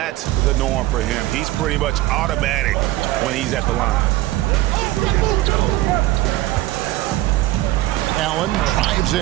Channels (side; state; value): left; quieter; 16.6 dB